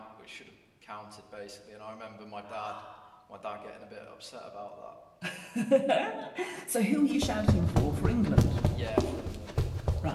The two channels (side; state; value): both; identical; correlation 1.00